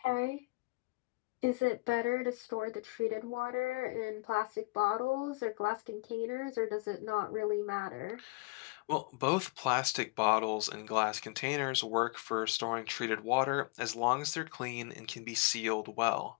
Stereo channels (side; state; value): right; quieter; 26.6 dB